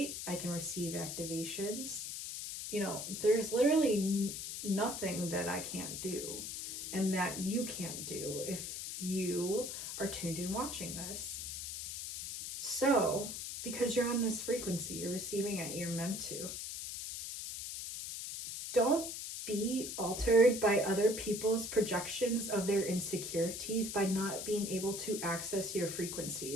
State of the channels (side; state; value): left; noise; hiss, 6 dB below the sound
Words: I can receive activations. You know, there's literally nothing that I can't do and that you can't do if you are tuned in watching this. So, because you're on this frequency, you're receiving it, you're meant to. Don't be altered by other people's projections of their insecurities by not being able to access your